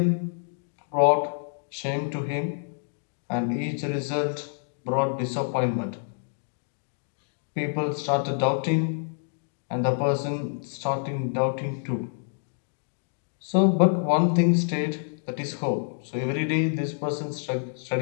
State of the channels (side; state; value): right; silent; digital silence